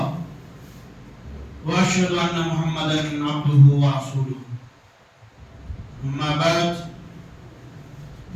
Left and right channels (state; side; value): identical; both; correlation 1.00